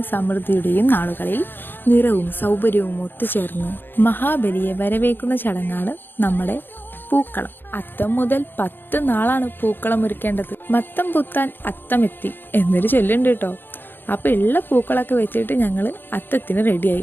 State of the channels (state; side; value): late; right; 0.097 ms